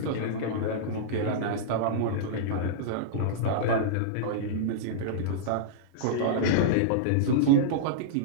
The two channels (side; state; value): both; different; correlation -0.03